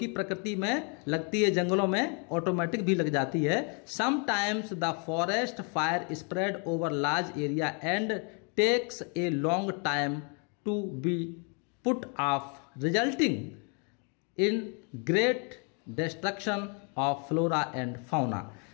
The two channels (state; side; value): quieter; right; 36.8 dB